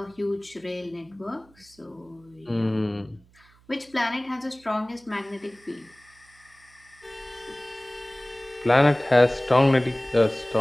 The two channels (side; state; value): right; noise; hum, 29 dB below the sound